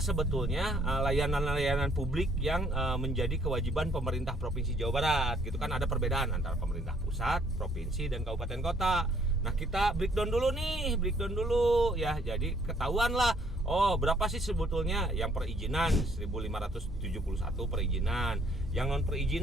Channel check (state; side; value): normal; both; correlation 0.64